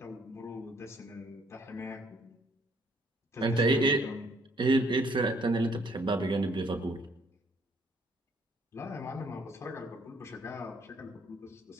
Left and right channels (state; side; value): normal; both; correlation 0.65